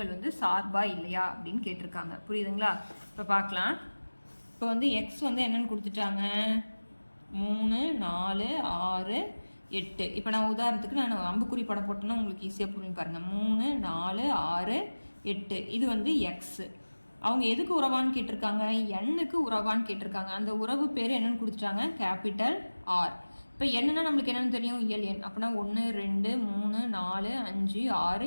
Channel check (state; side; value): inverted; both; correlation -1.00